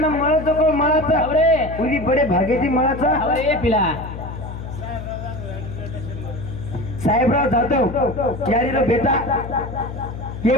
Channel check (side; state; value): left; noise; hum, 9 dB below the sound